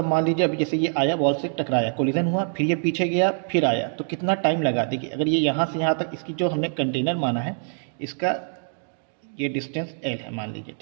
मान लीजिए अभी जैसे ये आया, बॉल से टकराया, कोलिजन हुआ, फिर ये पीछे गया, फिर आया, तो कितना टाइम लगा। देखिए अगर ये यहाँ से यहाँ तक, इसकी जो हमने कंटेनर माना है, इसका ये डिस्टेंस l है मान लीजिए,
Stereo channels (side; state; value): left; silent; digital silence